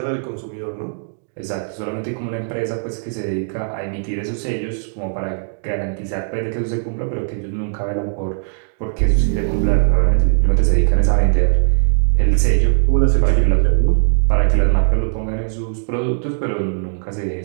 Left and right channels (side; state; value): left; silent; digital silence